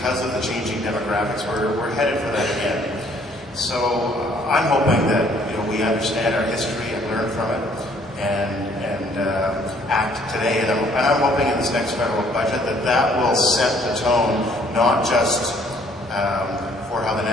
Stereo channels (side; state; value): both; normal; correlation 0.61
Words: of the changing demographics, we're headed for that again. So I'm hoping that we understand our history and learn from it and act today. And I'm hoping in this next federal budget that will set the tone, not just for how the